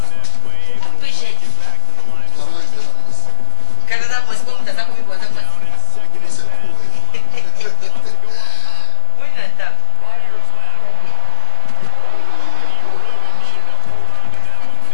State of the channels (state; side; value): different; both; correlation 0.00